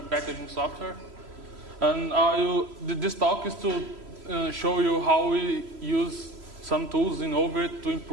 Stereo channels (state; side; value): late; left; 3.0 ms